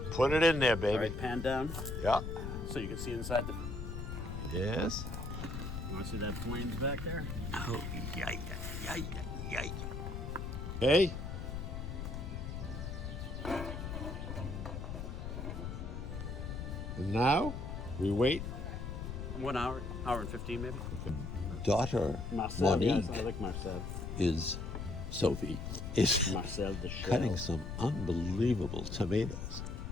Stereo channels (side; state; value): left; noise; rumble, 6 dB below the sound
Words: Put it in there, All baby. right, pan down Yeah. so you can see inside the. Yes. You want to see that flames back there? Oh, yay. Hey. And now we wait. 1 hour, hour and 15 maybe. Daughter Marcel, yes, Monique I like Marcel. Sophie is Marcel the Shell. cutting some unbelievable tomatoes.